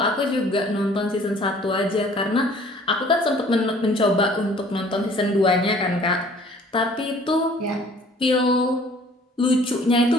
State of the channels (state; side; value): normal; both; correlation 0.54